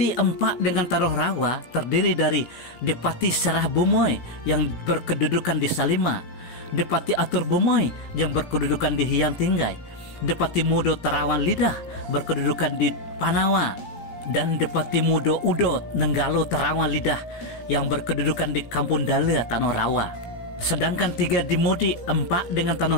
4 dengan Tanah Rawa terdiri dari Depati Serah Bumoy yang berkedudukan di Salima, Depati Atur Bumoy yang berkedudukan di Hyang Tinggai, Depati Mudo Terawan Lidah berkedudukan di Panawa, dan Depati Mudo Udo Nenggalo Terawan Lidah yang berkedudukan di Kampung Dalia Tanah Rawa. Sedangkan 3 di Mudik 4 dengan Tanah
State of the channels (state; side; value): late; right; 17 ms